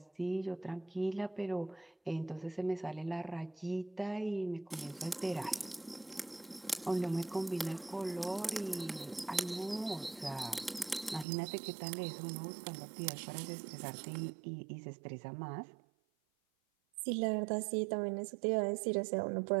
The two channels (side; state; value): left; drops out; at 11.2 s